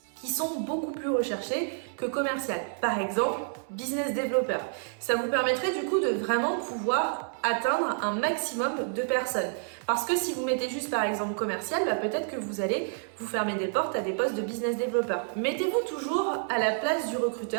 qui sont beaucoup plus recherchés que commercial. Par exemple, business developer. Ça vous permettrait du coup de vraiment pouvoir atteindre un maximum de personnes. Parce que si vous mettez juste par exemple commercial, peut-être que vous allez vous fermer des portes à des postes de business developer. Mettez-vous toujours à la place du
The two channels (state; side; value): silent; left; 59 dB below the other